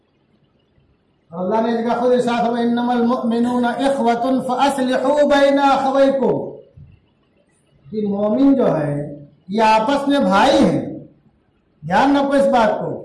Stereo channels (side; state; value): both; identical; correlation 1.00